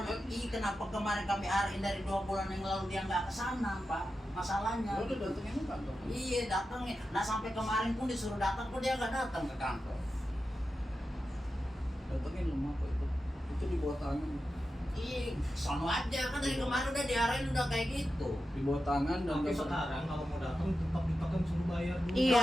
kan? Kenapa kemarin kami arahin dari 2 bulan yang lalu dia nggak ke sana Pak? Masalahnya. Lo udah datengin ke kantor? Iya datangnya. Nah sampai kemarin pun disuruh datang kok dia nggak datang ke kantor. Datengin lemah kok itu di bawah tangan. Ih, sono aja kan dari kemarin udah diarahin udah kayak gitu. Di bawah tangan dan Tapi sekarang kalau mau datang tetap ditekan suruh bayar dulu. Iya.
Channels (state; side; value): normal; both; correlation 0.91